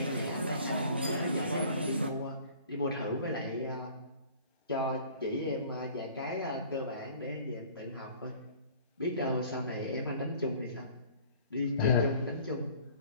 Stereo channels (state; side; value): inverted; both; correlation -0.50